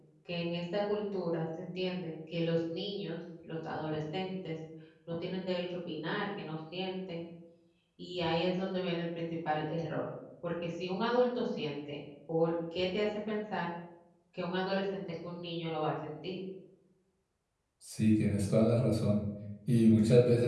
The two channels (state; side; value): identical; both; correlation 1.00